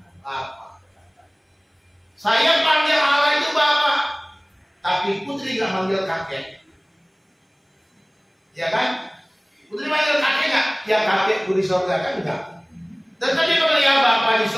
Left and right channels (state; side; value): identical; both; correlation 1.00